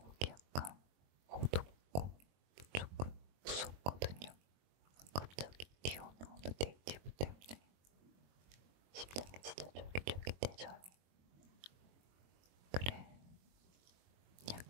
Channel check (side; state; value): left; late; 22 ms